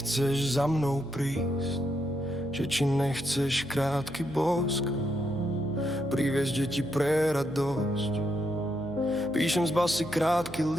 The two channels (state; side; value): noise; left; hum, 17 dB below the sound